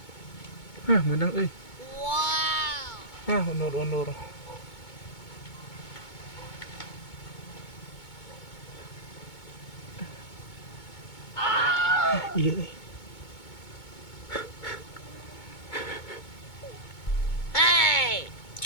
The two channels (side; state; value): right; late; 2.2 ms